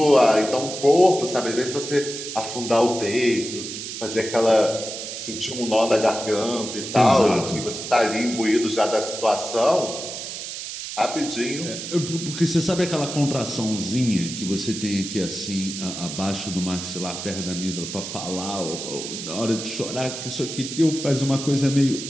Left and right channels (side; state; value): right; noise; hiss, 8 dB below the sound